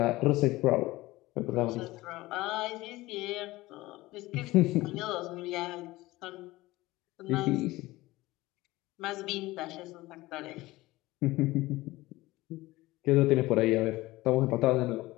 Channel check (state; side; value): quieter; right; 19.0 dB